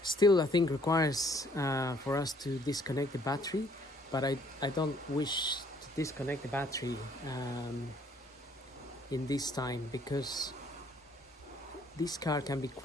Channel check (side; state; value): both; normal; correlation 0.63